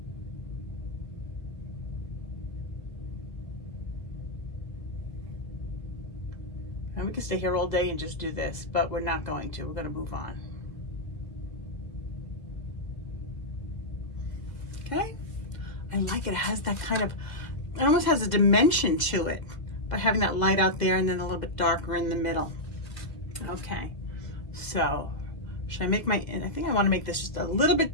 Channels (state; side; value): late; right; 2.0 ms